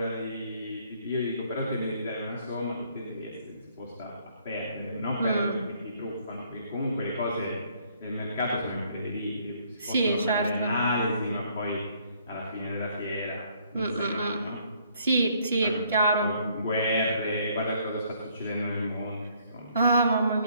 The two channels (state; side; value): inverted; both; correlation -0.65